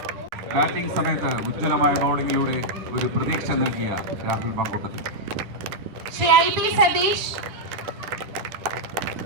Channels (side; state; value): left; late; 10 ms